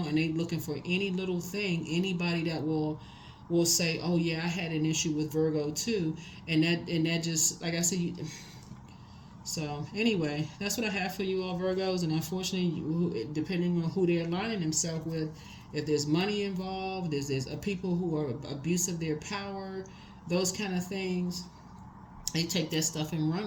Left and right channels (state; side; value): identical; both; correlation 1.00